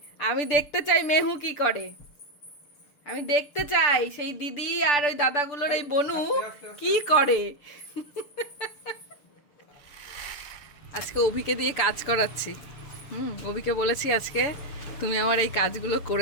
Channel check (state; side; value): late; right; 6.9 ms